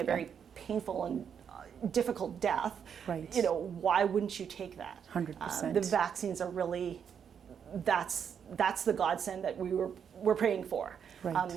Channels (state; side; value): quieter; left; 7.6 dB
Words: very painful and difficult death, why wouldn't you take that? 100%. The vaccines are really, that's the godsend that we're praying for,